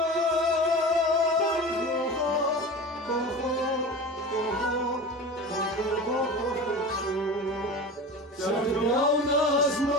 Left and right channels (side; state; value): both; normal; correlation 0.32